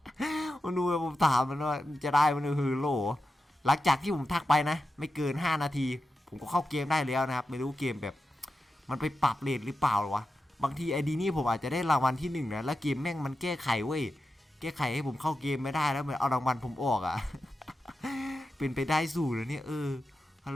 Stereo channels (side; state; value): both; normal; correlation 0.91